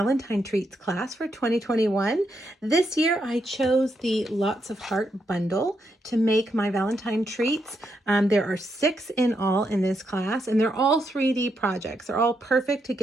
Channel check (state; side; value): normal; both; correlation 0.80